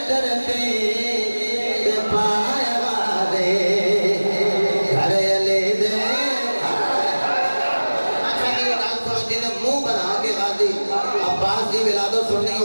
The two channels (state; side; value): inverted; both; correlation -1.00